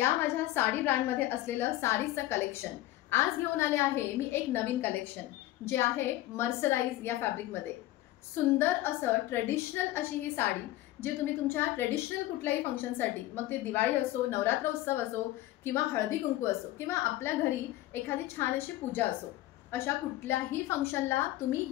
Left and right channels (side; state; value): right; quieter; 15.8 dB